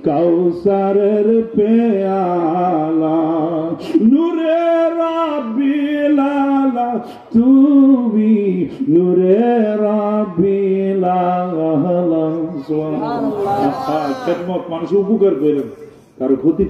কাউসারের পেয়ালা, নূরে রাব্বি লালা তুমি, নূরে রাব্বি লালা। খেদমত, মানুষ উপকার করেন, কারো ক্ষতি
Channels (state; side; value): identical; both; correlation 1.00